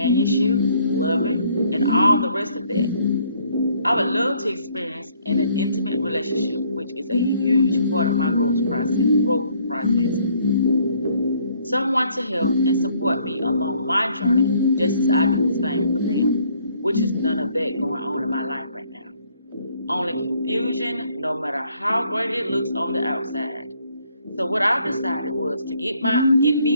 loving, and all the rest of that. I would love to experience in an intimate relationship, which is a huge part of my growth process. Someone to help and support me along my journey, just as I do the same for them, which is none of that going on in my life right now. Only confusion, no matter how great it looks on the outside. So what I decided was to get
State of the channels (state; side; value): inverted; both; correlation -0.64